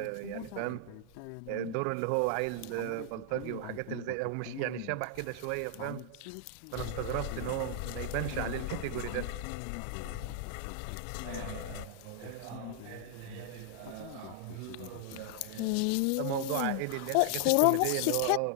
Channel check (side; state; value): both; different; correlation 0.00